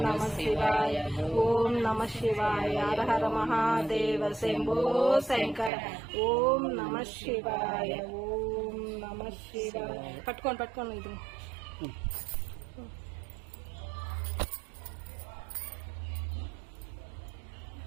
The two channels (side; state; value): left; drops out; at 5.7 s